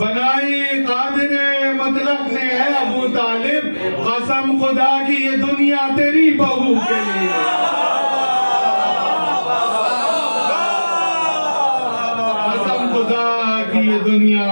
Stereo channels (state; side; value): inverted; both; correlation -1.00